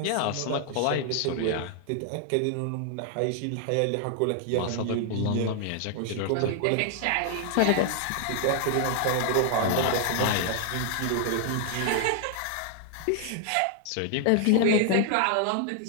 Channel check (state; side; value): different; both; correlation 0.00